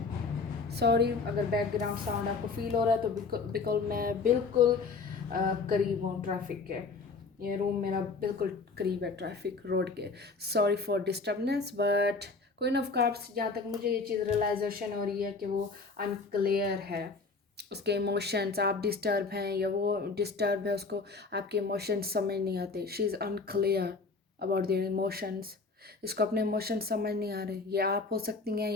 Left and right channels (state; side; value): quieter; right; 4.2 dB